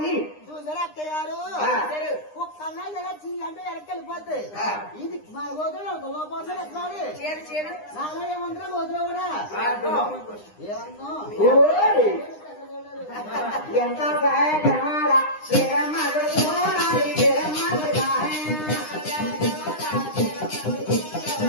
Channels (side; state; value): right; late; 9.8 ms